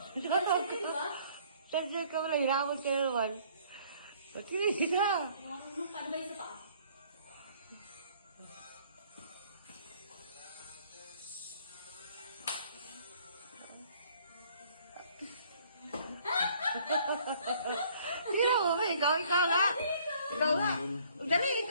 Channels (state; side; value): inverted; both; correlation -0.59